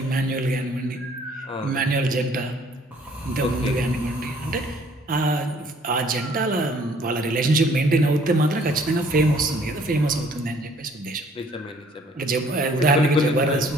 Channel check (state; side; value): normal; both; correlation 0.59